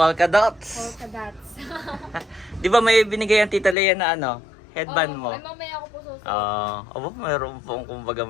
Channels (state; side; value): drops out; right; at 3.8 s